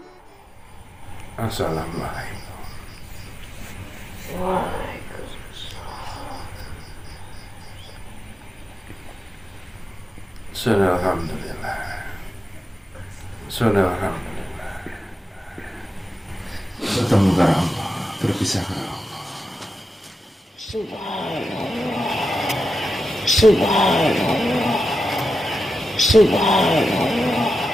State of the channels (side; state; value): both; normal; correlation 0.90